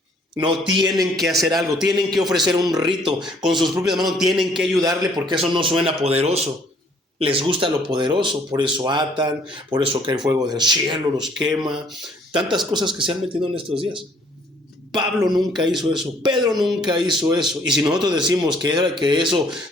No tienen que hacer algo, tienen que ofrecer un rito con sus propias manos, tienen que ayudarle porque eso no suena poderoso. Les gusta lo poderoso, por eso atan, por eso cae fuego del cielo, los quema. Tantas cosas que se han metido en estos días. Pablo nunca hizo eso, Pedro nunca hizo eso. Y si nosotros decimos que eso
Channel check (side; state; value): both; normal; correlation 0.61